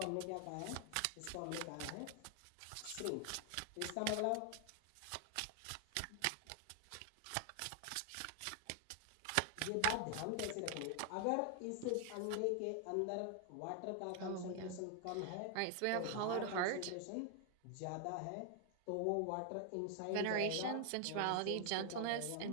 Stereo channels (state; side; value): different; both; correlation 0.00